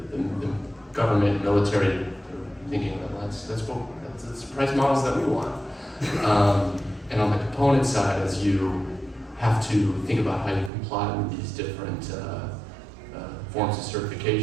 government, military, thinking that's price models that we want. And on the component side, as you have to think about how you comply with these different forms of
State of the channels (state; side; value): drops out; left; at 10.7 s